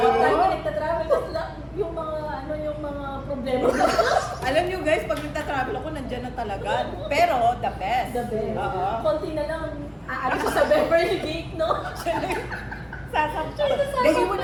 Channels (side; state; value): both; identical; correlation 1.00